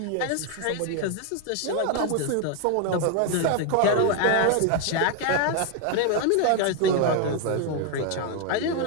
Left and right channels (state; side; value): different; both; correlation 0.01